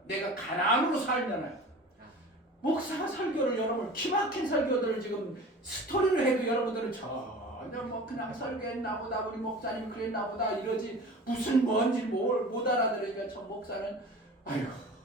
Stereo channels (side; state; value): both; normal; correlation 0.39